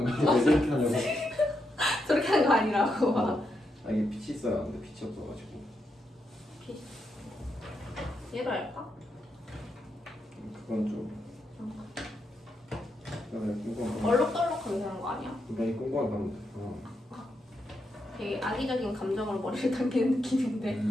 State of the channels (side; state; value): both; normal; correlation 0.82